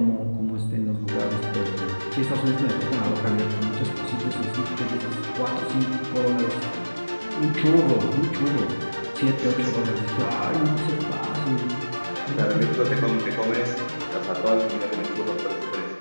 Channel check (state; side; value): inverted; both; correlation -1.00